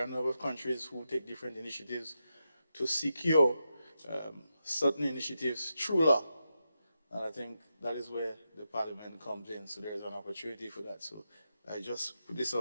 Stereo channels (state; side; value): inverted; both; correlation -0.88